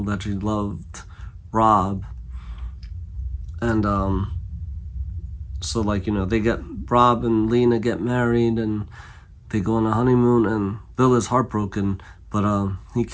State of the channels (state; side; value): identical; both; correlation 1.00